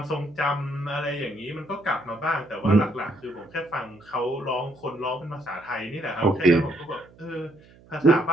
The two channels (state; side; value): noise; right; hum, 25 dB below the sound